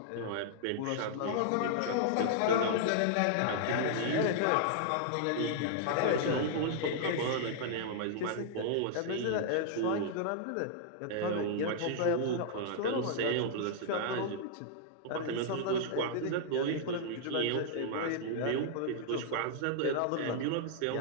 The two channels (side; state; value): both; different; correlation -0.01